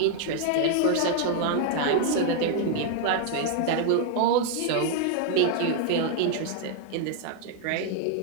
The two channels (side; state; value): both; different; correlation 0.00